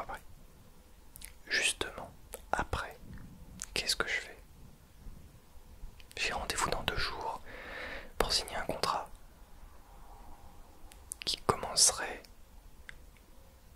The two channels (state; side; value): identical; both; correlation 1.00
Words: après. Justement, après, qu'est-ce que je fais? J'ai rendez-vous dans 2 jours pour signer un contrat qui commencerait